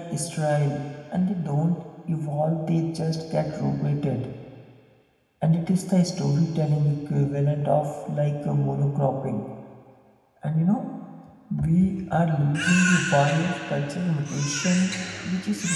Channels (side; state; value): both; identical; correlation 1.00